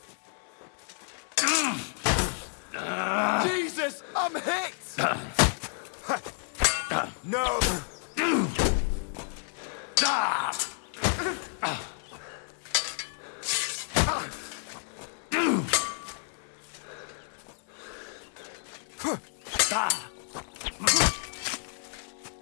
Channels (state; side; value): silent; right; 58 dB below the other